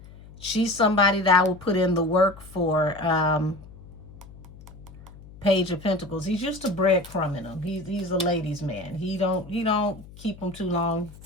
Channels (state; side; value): noise; left; hum, 19 dB below the sound